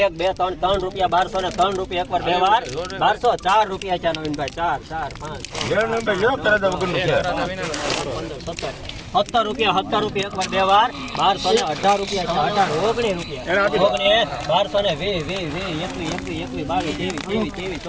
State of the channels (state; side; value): identical; both; correlation 1.00